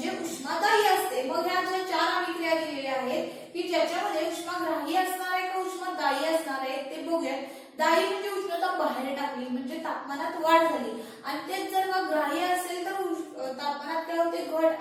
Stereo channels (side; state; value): both; identical; correlation 1.00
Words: उष्मादायी असते मग ह्या ज्या 4 अभिक्रिया दिलेल्या आहेत की ज्याच्यामध्ये उष्माग्राही असणार आहे का उष्मादायी असणार आहे ते बघूया दायी म्हणजे उष्णता बाहेर टाकली म्हणजे तापमानात वाढ झाली आणि तेच जर का ग्राह्य असेल तर तापमानात काय होते घट